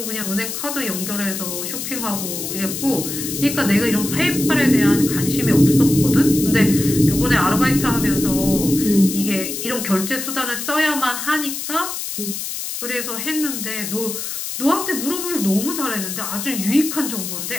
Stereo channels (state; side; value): noise; left; hiss, 5 dB below the sound